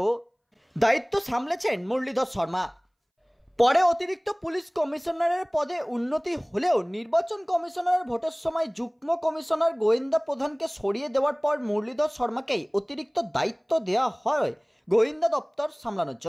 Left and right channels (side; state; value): both; identical; correlation 1.00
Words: দায়িত্ব সামলেছেন মুরলীধর শর্মা। পরে অতিরিক্ত পুলিশ কমিশনারের পদে উন্নতি হলেও নির্বাচন কমিশনারের ভোটের সময় যুগ্ম কমিশনার গোয়েন্দা প্রধানকে সরিয়ে দেওয়ার পর মুরলীধর শর্মাকেই অতিরিক্ত দায়িত্ব দেওয়া হয় গোয়েন্দা দপ্তর সামলানোর